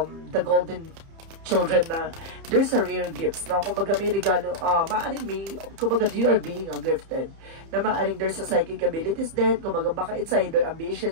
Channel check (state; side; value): late; left; 30 ms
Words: golden children na there's a rare gifts. Na kumbaga may regalo, kumbaga you are being gifted. Na maaring there's a psychic abilities then, kumbaga baka it's either